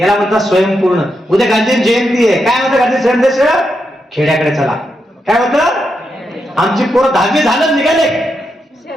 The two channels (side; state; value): both; normal; correlation 0.84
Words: म्हणतात स्वयंपूर्ण. उद्या गांधी जयंती आहे. काय म्हणतं गांधी संदेश? खेड्याकडे चला. काय म्हणतं? आमची पोरं 10वी झालं निघाले